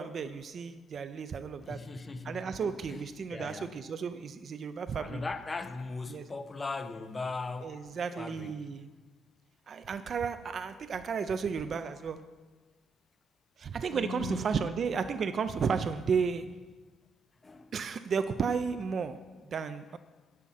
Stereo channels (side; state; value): left; quieter; 4.4 dB